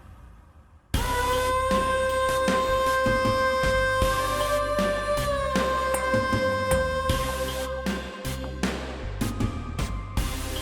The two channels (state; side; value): identical; both; correlation 1.00